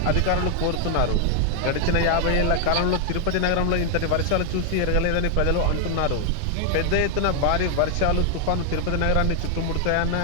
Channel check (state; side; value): different; both; correlation 0.00